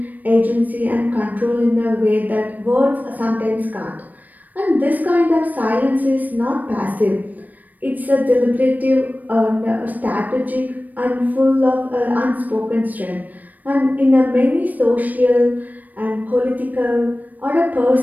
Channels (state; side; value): late; left; 0.082 ms